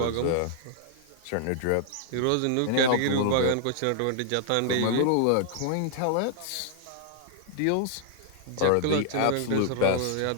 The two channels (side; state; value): both; different; correlation -0.01